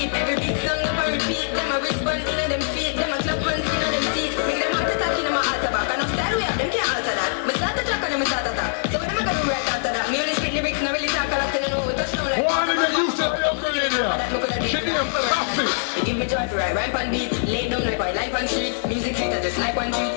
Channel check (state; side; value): silent; right; 63 dB below the other